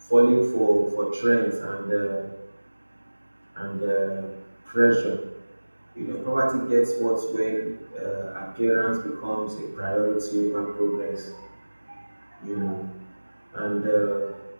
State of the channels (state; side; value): inverted; both; correlation -1.00